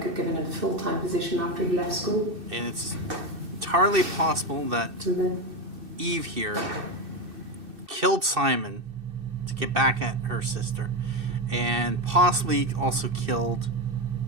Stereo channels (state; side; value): late; left; 2.6 ms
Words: had given him a full-time position after he left school. And it's entirely possible that then Eve here killed Simon to get back at her sister, and possibly also killed